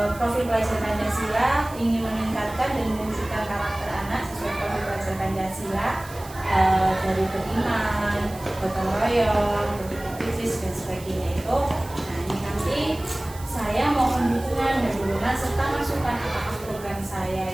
profil pelajar Pancasila, ingin meningkatkan dan mewujudkan karakter anak sesuai profil pelajar Pancasila, dari beriman, gotong royong, berpikir dan sebagainya itu. Nah, ini nanti saya mohon dukungan dan dukungan serta masukan apakah program saya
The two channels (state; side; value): noise; right; hiss, 18 dB below the sound